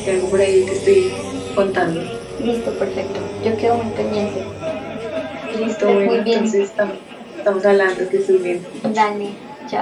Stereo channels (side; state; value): both; identical; correlation 1.00